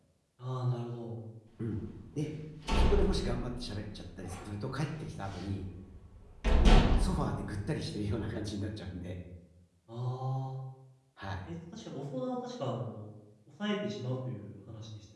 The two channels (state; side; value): identical; both; correlation 1.00